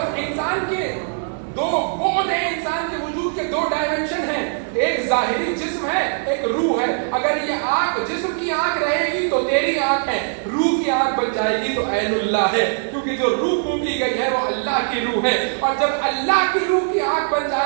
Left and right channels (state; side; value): silent; left; digital silence